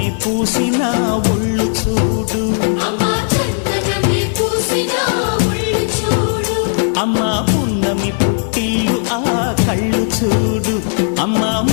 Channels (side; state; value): right; silent; 61 dB below the other